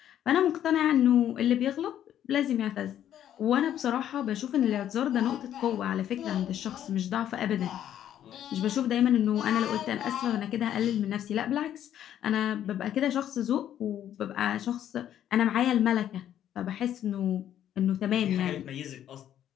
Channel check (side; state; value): right; quieter; 10.8 dB